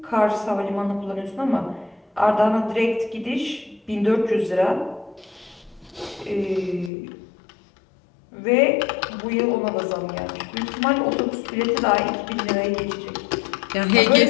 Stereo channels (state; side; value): drops out; right; at 6.9 s